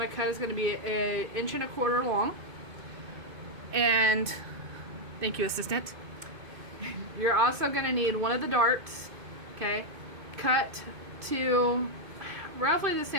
to cut is going to be 1.25 inches long. And thank you, assistant. You're also going to need one of the darts, okay, cut to roughly the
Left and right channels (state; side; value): late; left; 2.2 ms